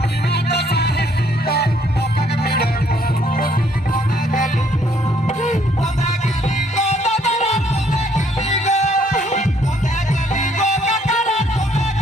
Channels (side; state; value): both; normal; correlation 0.66